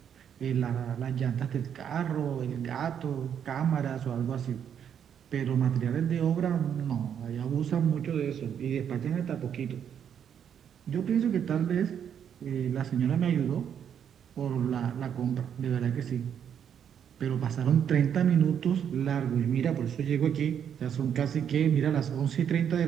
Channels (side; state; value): left; quieter; 8.5 dB